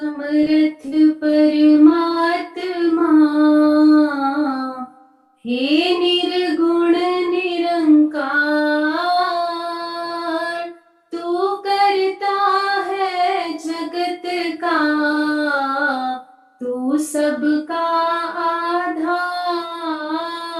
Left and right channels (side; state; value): both; identical; correlation 1.00